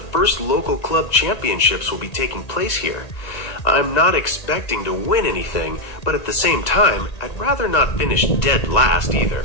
first local club championships will be taking place here. I'm not expecting to win anything, but at the same time, I'd rather not finish dead last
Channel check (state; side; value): late; right; 2.0 ms